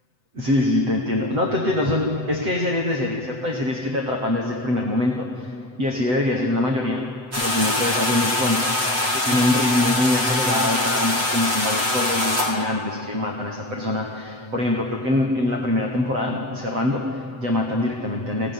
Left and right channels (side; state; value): left; late; 7.9 ms